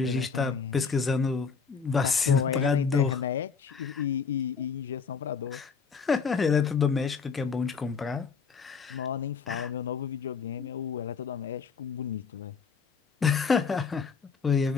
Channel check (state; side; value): quieter; right; 5.5 dB